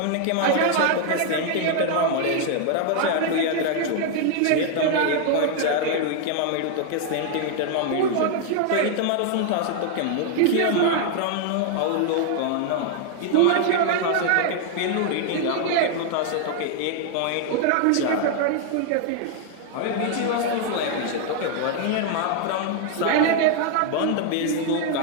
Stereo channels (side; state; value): both; different; correlation 0.00